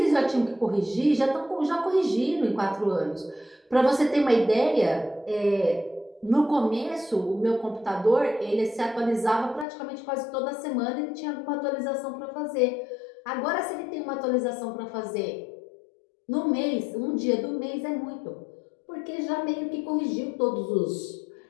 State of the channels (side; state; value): right; drops out; at 9.7 s